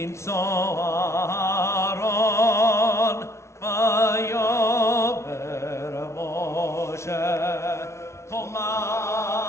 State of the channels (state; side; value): late; right; 0.13 ms